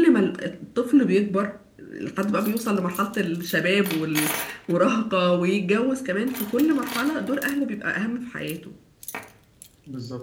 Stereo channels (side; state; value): both; identical; correlation 1.00